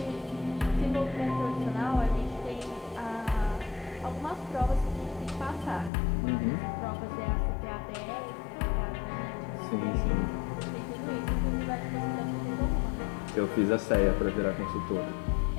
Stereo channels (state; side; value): drops out; right; at 5.9 s